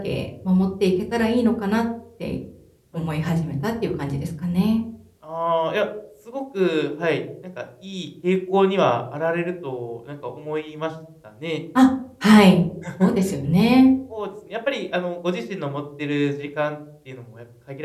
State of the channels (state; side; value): identical; both; correlation 1.00